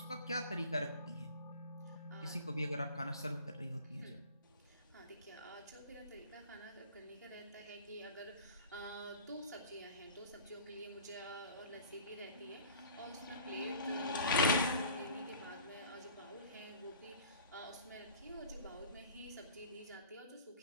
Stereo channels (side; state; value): both; inverted; correlation -0.45